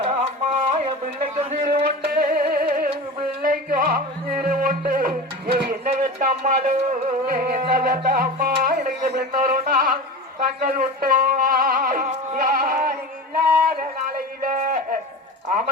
அம்மா என் பிள்ளைக்கு சிறு உண்டு பிள்ளைக்கும் சிறு உண்டு என்ன வெட்ட அம்மாடு என்ன வெட்ட அம்மா எனக்கு பின்னொருனா கண்கள் விட்டோம் இல்லாத நாளையில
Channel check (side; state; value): both; normal; correlation 0.30